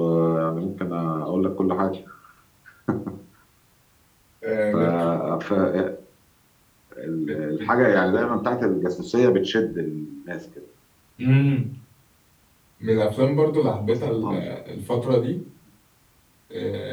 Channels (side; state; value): both; identical; correlation 1.00